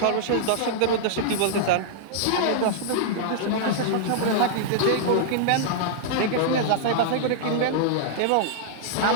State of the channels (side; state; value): both; different; correlation -0.01